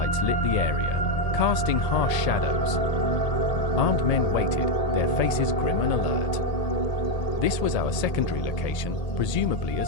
lit the area, casting harsh shadows. Armed men waited, their faces grim and alert. This was our secondary location, presumably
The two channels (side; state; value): right; late; 1.8 ms